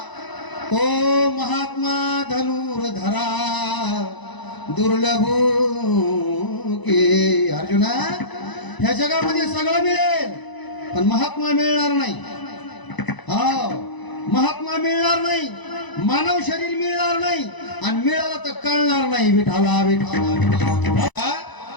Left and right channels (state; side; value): late; right; 1.0 ms